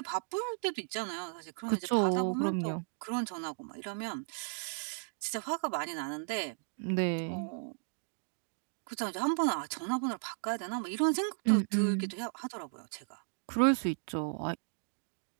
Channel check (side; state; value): left; silent; digital silence